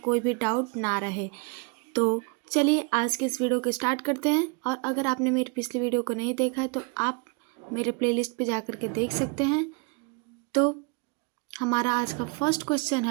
भी डाउट ना रहे। तो चलिए आज के इस वीडियो को स्टार्ट करते हैं। और अगर आपने मेरी पिछली वीडियो को नहीं देखा है तो आप मेरे प्लेलिस्ट पे जा कर के देख सकते हैं। तो हमारा आज का फर्स्ट क्वेश्चन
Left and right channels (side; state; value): left; quieter; 31.7 dB